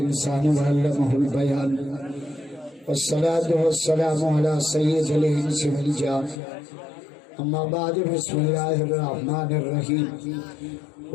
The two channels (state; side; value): drops out; right; at 6.4 s